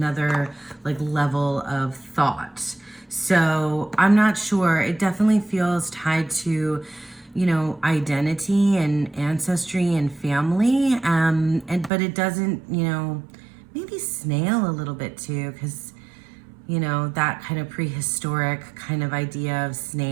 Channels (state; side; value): drops out; left; at 11.9 s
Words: like level of thought. So I'm not sure. It definitely feels tied to, you know, identity and ancestry and family. But it doesn't, you know, maybe Snail a little bit too, because, you know, that kind of prehistoric kind of idea of